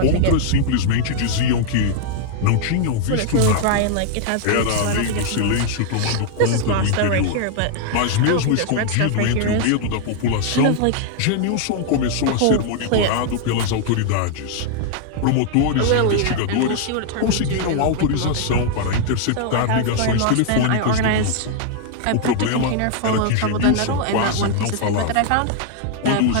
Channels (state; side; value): different; both; correlation 0.00